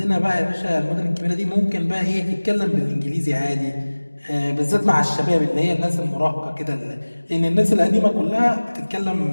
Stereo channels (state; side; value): inverted; both; correlation -1.00